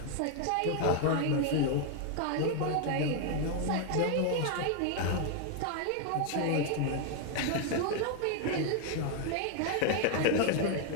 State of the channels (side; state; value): both; different; correlation 0.00